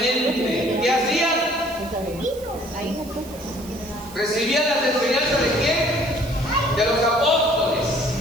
¿Qué hacía? Recibían las enseñanzas de quién? De los apóstoles.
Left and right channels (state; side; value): noise; right; hiss, 19 dB below the sound